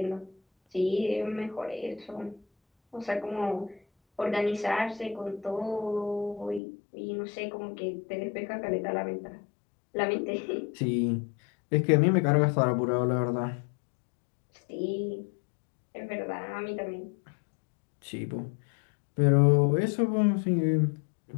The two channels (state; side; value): drops out; right; at 6.6 s